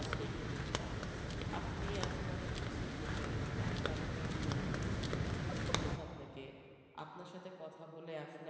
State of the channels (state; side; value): identical; both; correlation 1.00